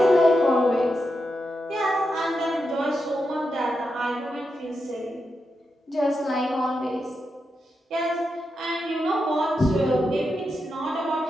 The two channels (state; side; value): normal; both; correlation 0.86